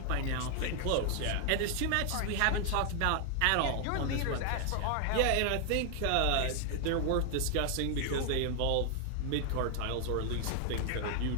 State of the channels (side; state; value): both; different; correlation 0.00